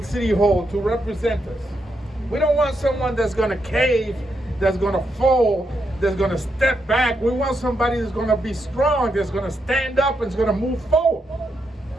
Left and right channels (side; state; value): both; normal; correlation 0.82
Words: City Hall to represent us. We don't want someone that's going to cave, that's going to fold, that's going to step back. We want somebody that's going to be strong, that's going to stand up and is going to move forward.